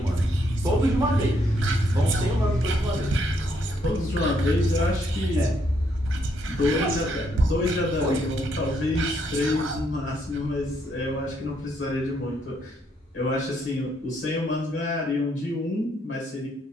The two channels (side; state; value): both; normal; correlation 0.73